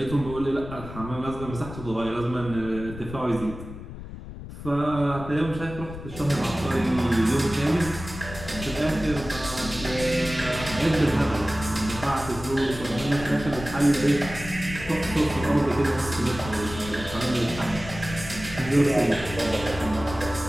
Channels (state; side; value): noise; left; rumble, 12 dB below the sound